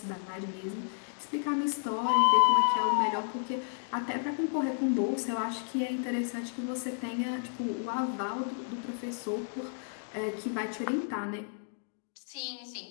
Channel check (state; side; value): silent; right; digital silence